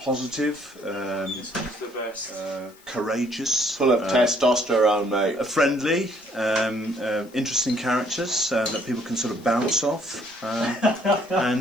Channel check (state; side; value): noise; left; hiss, 27 dB below the sound